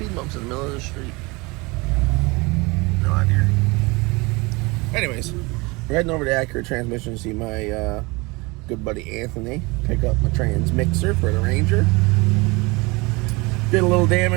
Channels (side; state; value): left; quieter; 25.3 dB